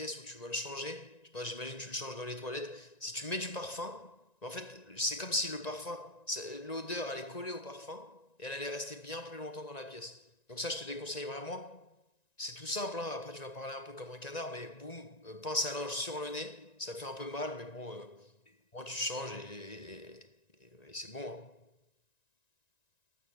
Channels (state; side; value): late; right; 1.9 ms